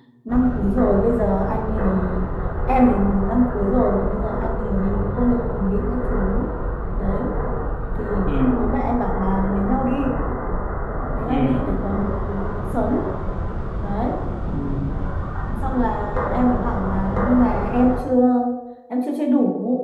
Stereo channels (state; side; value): identical; both; correlation 1.00